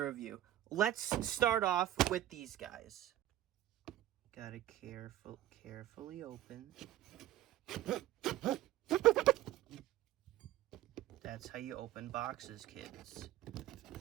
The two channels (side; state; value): left; quieter; 13.4 dB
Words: review. Let's start off with these guys. Gotta carefully open. That's how you open boxes, kids.